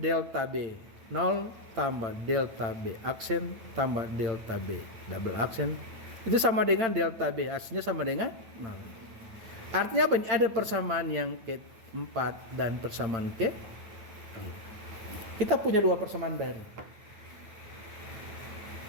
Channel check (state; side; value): late; left; 8.9 ms